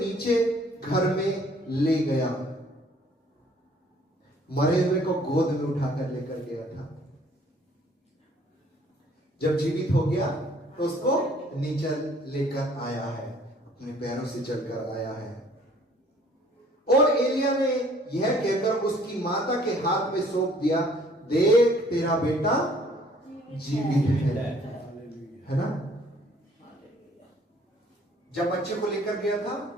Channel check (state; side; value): normal; both; correlation 0.58